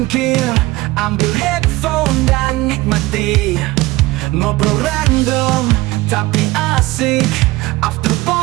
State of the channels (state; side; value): quieter; left; 19.8 dB